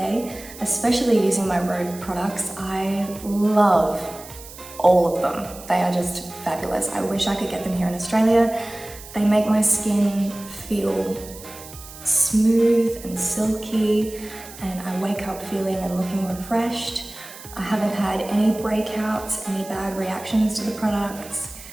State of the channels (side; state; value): right; noise; hiss, 16 dB below the sound